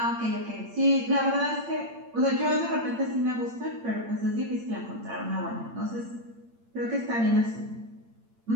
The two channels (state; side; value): late; left; 8.8 ms